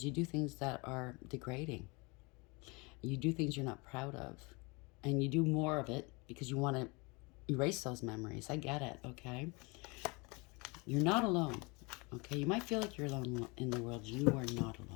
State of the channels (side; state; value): right; quieter; 27.9 dB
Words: you do things that are degrading. You do things you're not proud of. And you do more of it because you want to erase those memories. I get it, okay? You're not alone, okay? You might feel like you're alone in the world. You are not